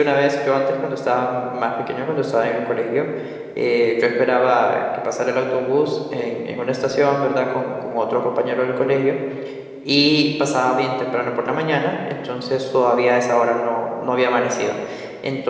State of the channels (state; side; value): identical; both; correlation 1.00